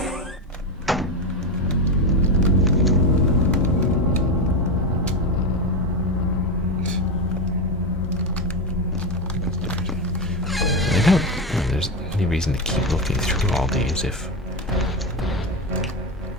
There's any reason to keep looking through all these if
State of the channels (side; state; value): both; normal; correlation 0.13